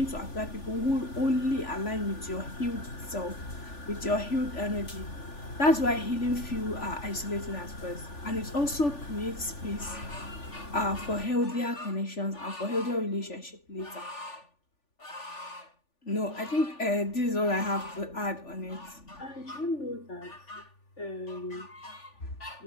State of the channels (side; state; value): right; late; 3.4 ms